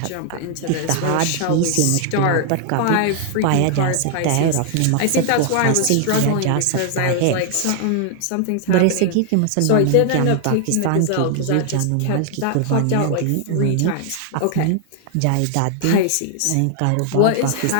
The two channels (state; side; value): different; both; correlation 0.00